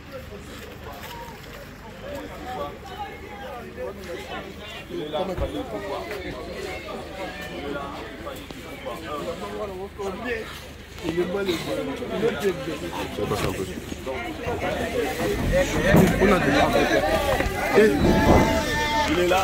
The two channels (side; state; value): both; identical; correlation 1.00